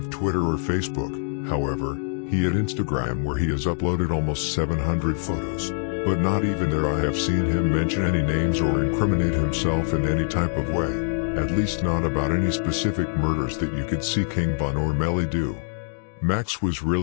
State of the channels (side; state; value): right; silent; digital silence